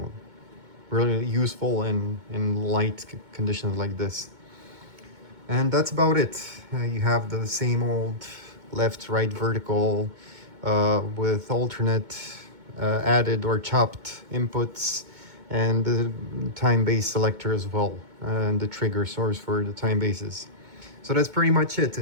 really useful in light conditions like this. And that's about it. You have the same old left, right, vertical with alternate added or chopped inputs, and the time base selector as well, and the trigger source for the time bases. So that's pretty much it.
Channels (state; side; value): late; left; 2.2 ms